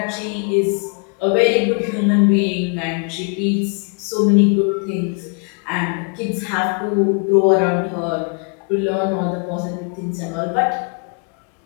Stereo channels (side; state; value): right; quieter; 37.4 dB